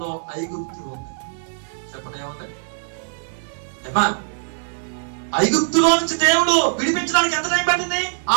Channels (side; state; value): left; silent; digital silence